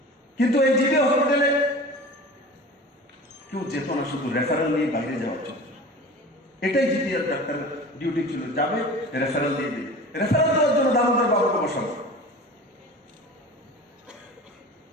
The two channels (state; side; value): normal; both; correlation 0.37